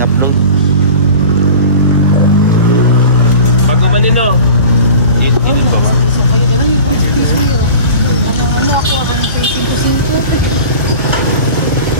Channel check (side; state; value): both; inverted; correlation -0.38